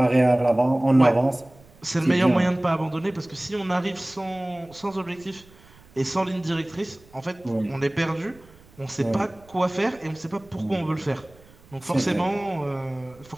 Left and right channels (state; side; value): noise; right; rumble, 26 dB below the sound